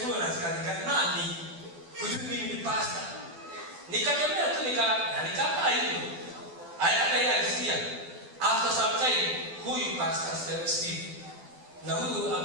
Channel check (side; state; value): left; late; 12 ms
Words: na askari nani? Kujua mimi ni pastor. Nikatembea tu nikakaa hivyo. Hata yeye alisikia. After some time, huyu pastor Steve na huyu